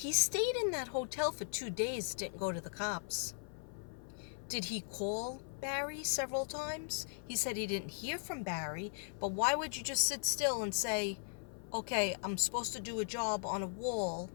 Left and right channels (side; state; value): right; silent; 52 dB below the other